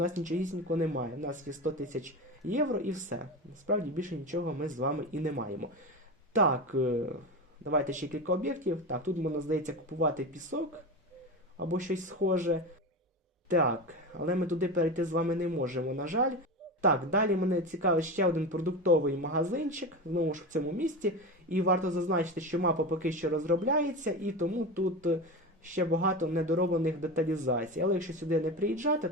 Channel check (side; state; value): both; normal; correlation 0.23